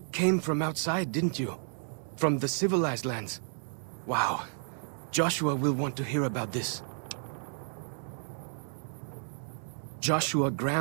came from outside, didn't you? From the civilized lands. Wow. Joshua will want to hear about this. Joshua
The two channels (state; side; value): silent; left; digital silence